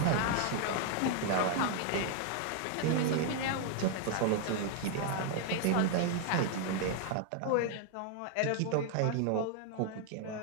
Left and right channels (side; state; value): both; different; correlation 0.00